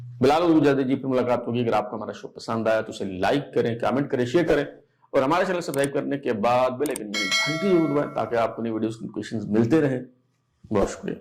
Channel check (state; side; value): identical; both; correlation 1.00